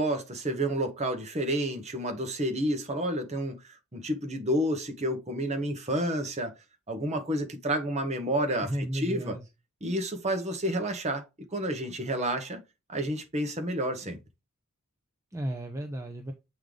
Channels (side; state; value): both; normal; correlation 0.34